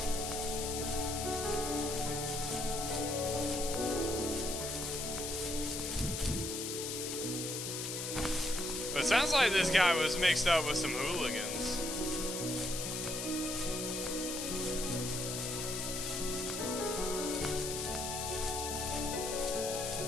But it sounds like this guy was mixed up with some hooligans.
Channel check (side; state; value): left; noise; hiss, 4 dB below the sound